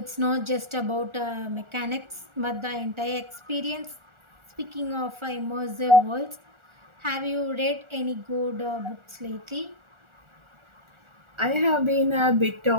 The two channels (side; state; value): left; late; 1.4 ms